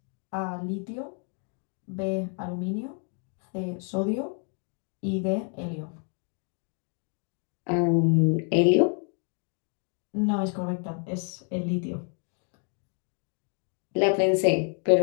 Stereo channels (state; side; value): quieter; right; 39.9 dB